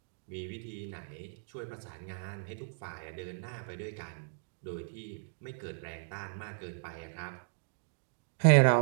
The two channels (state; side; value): silent; left; digital silence